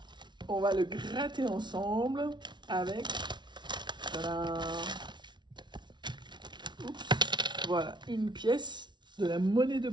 on va le gratter ensemble avec... Oups, voilà, une pièce de la monnaie de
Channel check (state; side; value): late; left; 0.22 ms